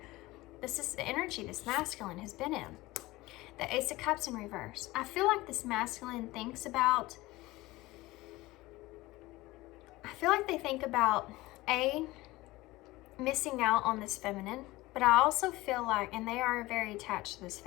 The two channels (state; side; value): quieter; right; 19.4 dB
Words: This is the energy this masculine has been in. The Ace of Cups in reverse. I feel like this masculine thinks about, they think about missing out on this feminine, but I also feel like, and they are very attached to this